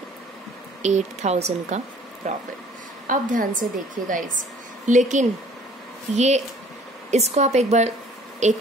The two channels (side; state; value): both; normal; correlation 0.54